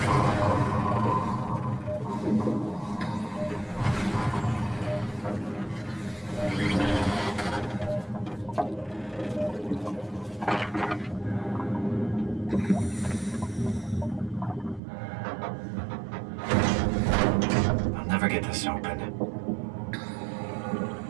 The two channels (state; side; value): drops out; left; at 14.8 s